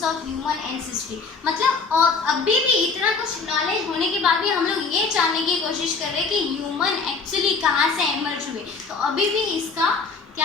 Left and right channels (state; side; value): quieter; right; 4.6 dB